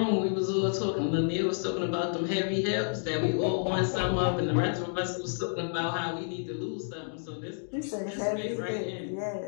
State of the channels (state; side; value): silent; right; digital silence